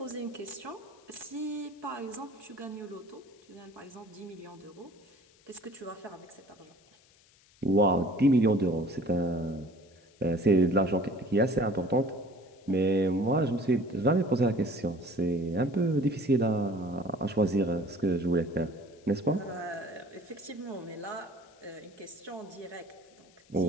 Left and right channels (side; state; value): left; noise; hiss, 30 dB below the sound